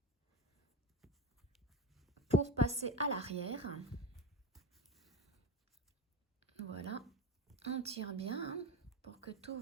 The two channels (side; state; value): both; normal; correlation 0.22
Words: Pour passer à l'arrière. Voilà. On tire bien hein, pour que tout